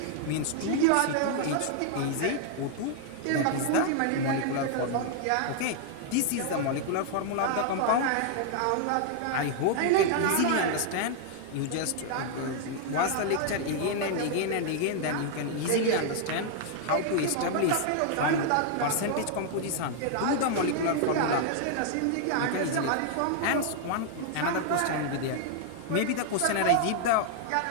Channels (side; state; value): both; different; correlation 0.00